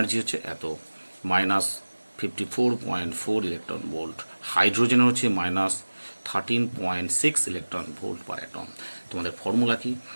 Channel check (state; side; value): inverted; both; correlation -1.00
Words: হচ্ছে এত, 54.4 ইলেকট্রন ভোল্ট, হাইড্রোজেনের হচ্ছে -13.6 ইলেকট্রন ভোল্ট পার অ্যাটম। তোমাদের ফর্মুলা কি?